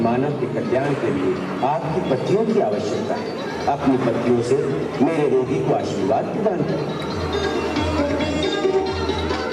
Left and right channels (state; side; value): identical; both; correlation 1.00